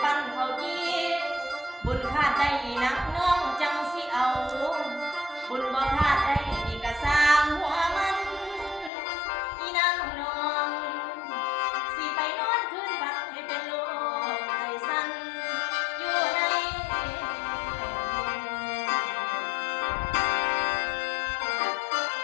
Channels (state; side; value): drops out; right; at 8.9 s